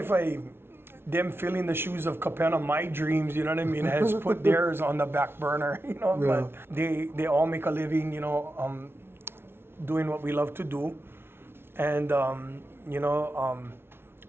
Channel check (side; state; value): left; late; 0.12 ms